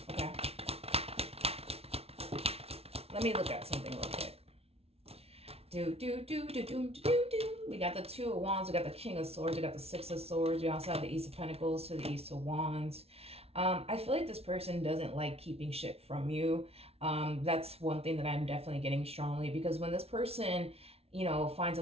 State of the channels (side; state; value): left; late; 0.30 ms